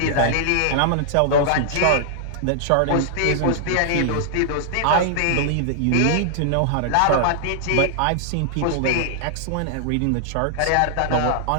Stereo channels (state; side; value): different; both; correlation -0.01